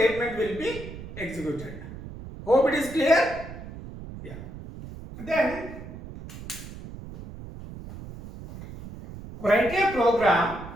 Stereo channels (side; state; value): right; noise; rumble, 13 dB below the sound